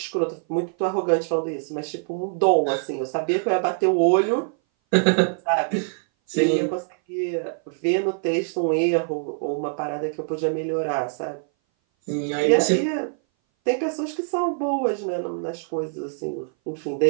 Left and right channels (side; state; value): left; silent; 59 dB below the other